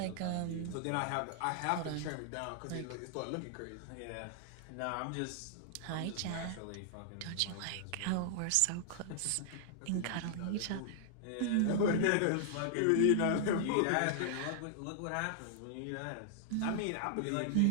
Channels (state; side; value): different; both; correlation -0.01